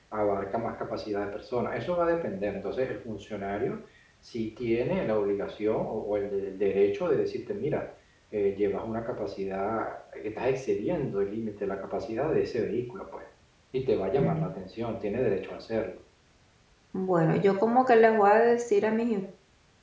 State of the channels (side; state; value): both; identical; correlation 1.00